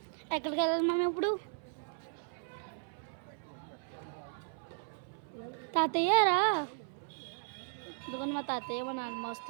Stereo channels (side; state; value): left; silent; 54 dB below the other